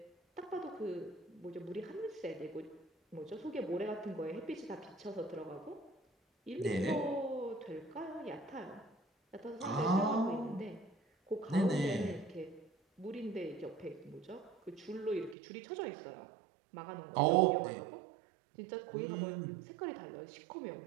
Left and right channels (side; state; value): left; drops out; at 15.4 s